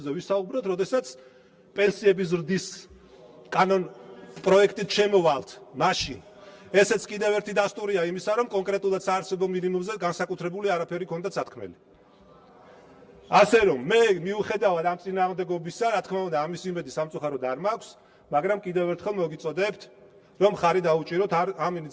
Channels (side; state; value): both; identical; correlation 1.00